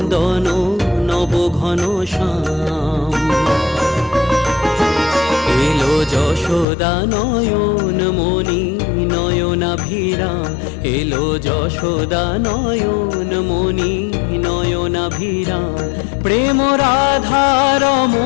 নব ঘন শ্যাম। এলো যশোদা নয়ন মণি নয়নাভিরাম, এলো যশোদা নয়ন মণি নয়নাভিরাম। প্রেম রাধার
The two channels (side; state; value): right; drops out; at 6.7 s